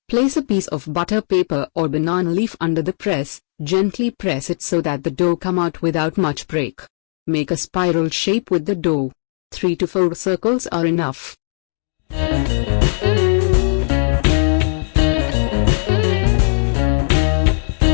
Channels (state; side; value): silent; right; digital silence